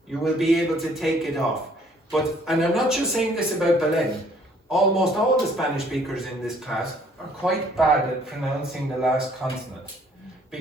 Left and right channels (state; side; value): normal; both; correlation 0.61